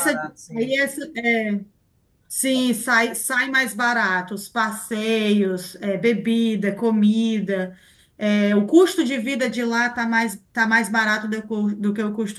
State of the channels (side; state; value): both; identical; correlation 1.00